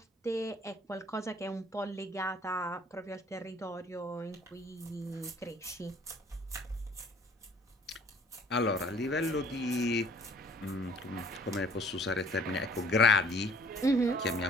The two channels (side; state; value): both; normal; correlation 0.56